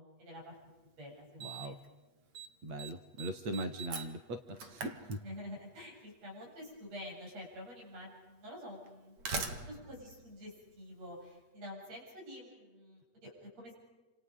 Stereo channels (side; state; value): left; late; 8.3 ms